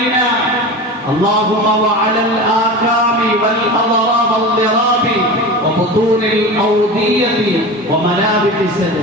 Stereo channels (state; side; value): normal; both; correlation 0.30